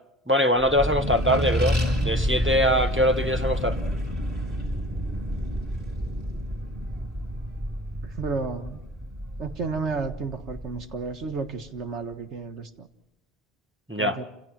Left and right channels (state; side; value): normal; both; correlation 0.42